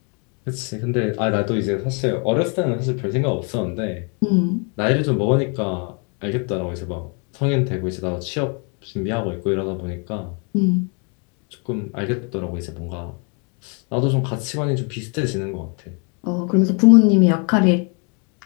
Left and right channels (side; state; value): right; quieter; 36.5 dB